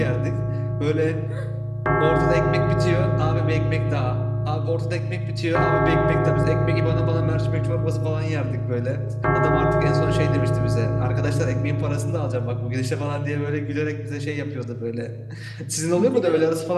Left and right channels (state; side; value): identical; both; correlation 1.00